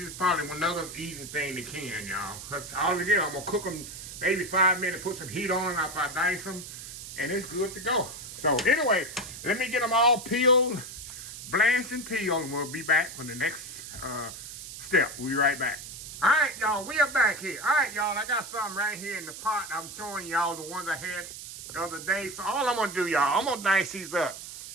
probably another easy thing to can, y'all. Cause all it is, I'm gonna cook them maybe 5 minutes, put some heat on them after I dice them, and it's good to go. So anyway, let me get them all peeled, blanched and peeled, and we'll be back for the next step. We'll be right back. All right, y'all, we are back here. All right, y'all, I got something right here in the pot. I'm showing y'all the ones I had the other day. So all I'm gonna do, y'all, I'm gonna dice these up,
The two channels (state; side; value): noise; right; hiss, 11 dB below the sound